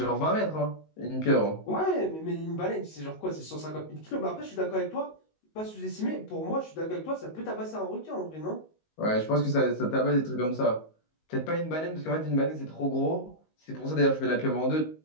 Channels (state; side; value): late; right; 19 ms